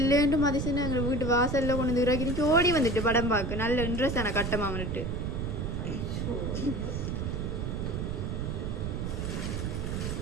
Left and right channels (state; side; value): noise; right; rumble, 2 dB below the sound